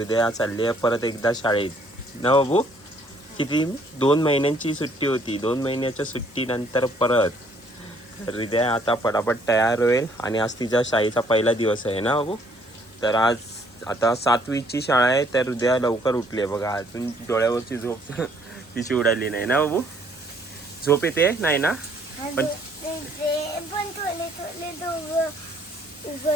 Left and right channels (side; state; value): both; normal; correlation 0.64